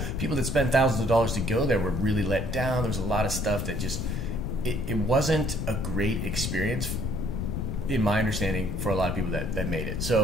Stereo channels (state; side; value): noise; left; rumble, 2 dB below the sound